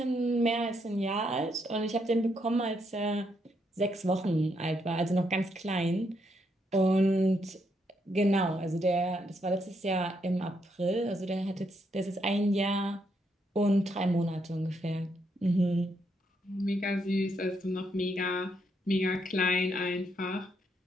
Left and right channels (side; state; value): both; normal; correlation 0.77